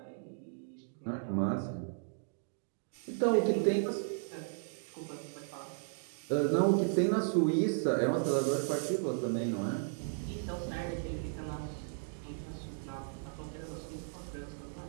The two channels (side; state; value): left; silent; digital silence